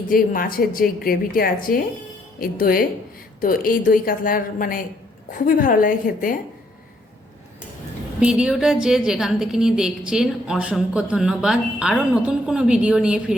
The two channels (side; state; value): both; normal; correlation 0.69